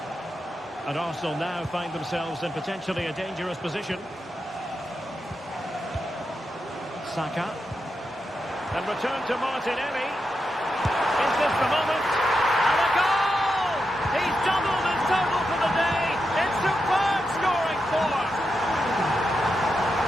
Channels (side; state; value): both; normal; correlation 0.87